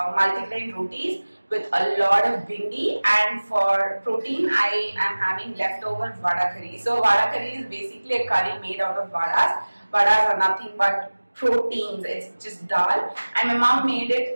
rotis with a lot of bhindi, and for protein I am having leftover vada curry. So vada curry is basically a curry made out of vadas. Vadas are nothing but proteins. It's just dal, and my mom made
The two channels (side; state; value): both; inverted; correlation -1.00